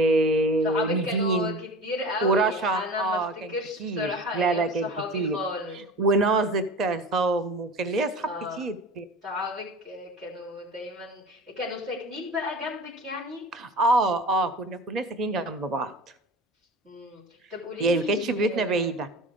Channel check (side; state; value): both; normal; correlation 0.35